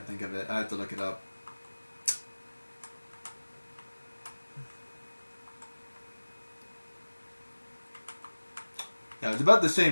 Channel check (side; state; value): both; inverted; correlation -1.00